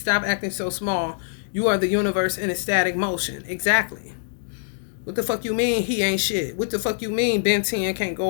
acting so small. You are the universe in a static motion. Exactly. What the fuck you mean he ain't shit? What the fuck you mean Ben 10 can't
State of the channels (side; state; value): right; silent; digital silence